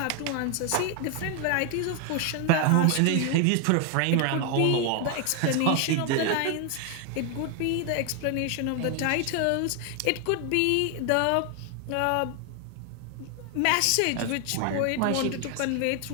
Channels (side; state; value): both; different; correlation 0.01